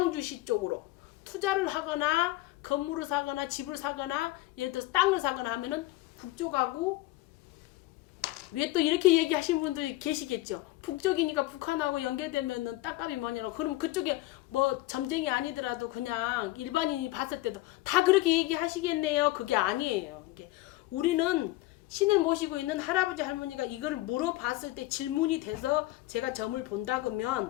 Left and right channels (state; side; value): quieter; right; 18.2 dB